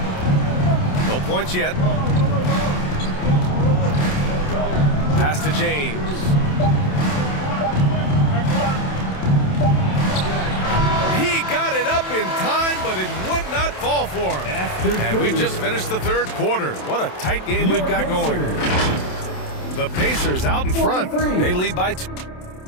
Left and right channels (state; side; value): late; right; 27 ms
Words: No points yet. Pass to James. He got it up in time, but it would not fall for him. And we've just finished the third quarter. What a tight game we've got going. The Pacers out in front. They lead by 2.